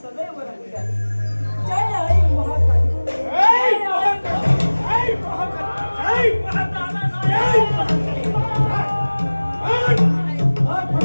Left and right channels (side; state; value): both; inverted; correlation -1.00